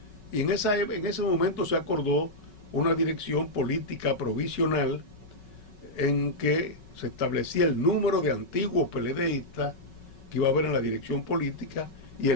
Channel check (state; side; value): late; right; 5.3 ms